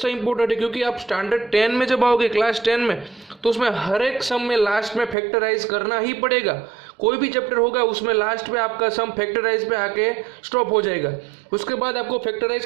इंपॉर्टेंट है, क्योंकि आप स्टैंडर्ड 10 में जब आओगे क्लास 10 में तो उसमें हर एक सम में लास्ट में फैक्टराइज करना ही पड़ेगा। कोई भी चैप्टर होगा उसमें लास्ट में आपका सम फैक्टराइज पे आके स्टॉप हो जाएगा, उसके बाद आपको फैक्टराइज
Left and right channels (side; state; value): left; drops out; at 5.2 s